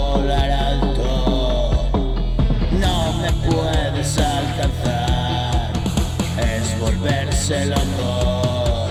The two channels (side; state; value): both; identical; correlation 1.00